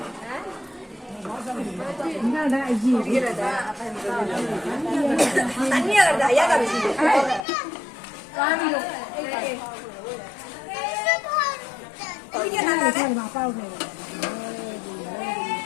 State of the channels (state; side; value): drops out; right; at 7.5 s